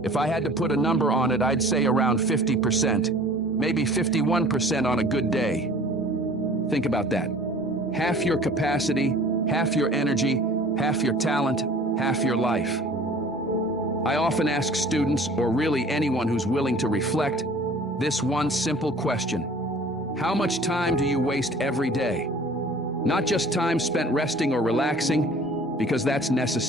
If I had to put a number on it, I'd say around 50%, maybe 51% on a good day. Think about that. Half your capacity, half your energy, half your talent, half your life. I often ask students, or really anyone who's willing to reflect, this one simple question. How much time do you waste every day? Not just time spent resting or relaxing, because that's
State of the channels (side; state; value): both; normal; correlation 0.48